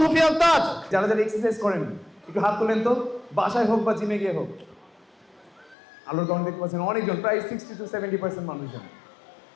সুফিয়ান তাজ। যারা যারা এক্সারসাইজ করেন একটু হাত তোলেন তো, বাসায় হোক বা জিমে গিয়ে হোক। আলোর কারণ দেখতে পাচ্ছেন অনেকজন, প্রায় 60 to 70% মানুষজন।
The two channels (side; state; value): right; drops out; at 5.8 s